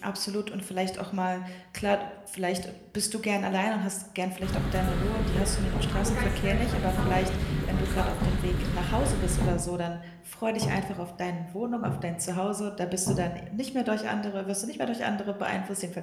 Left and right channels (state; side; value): identical; both; correlation 1.00